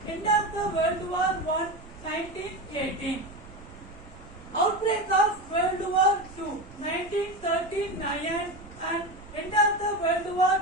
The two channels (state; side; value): noise; right; rumble, 19 dB below the sound